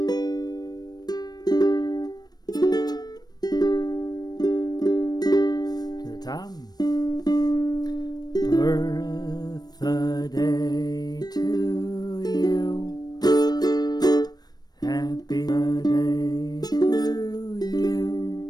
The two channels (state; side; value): late; right; 0.19 ms